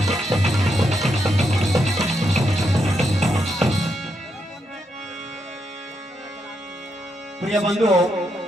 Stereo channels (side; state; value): both; normal; correlation 0.81